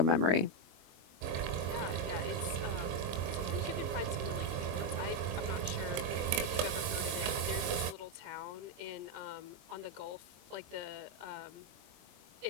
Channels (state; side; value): late; left; 23 ms